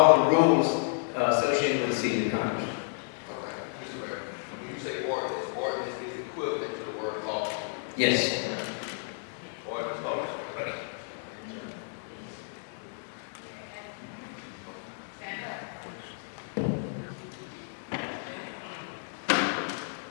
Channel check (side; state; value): right; silent; digital silence